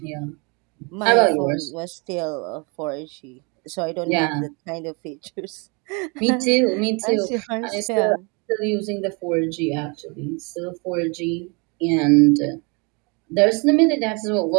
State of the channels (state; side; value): quieter; left; 31.4 dB